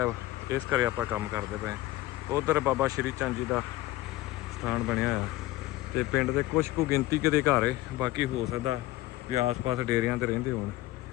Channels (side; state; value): right; quieter; 17.4 dB